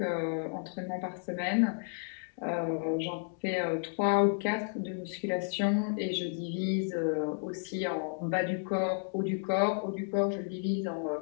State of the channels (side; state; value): right; silent; digital silence